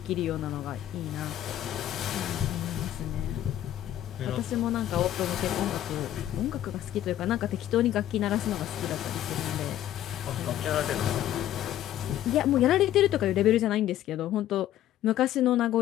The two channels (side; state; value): right; quieter; 12.4 dB